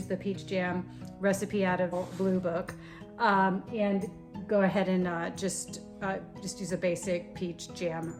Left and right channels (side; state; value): both; identical; correlation 1.00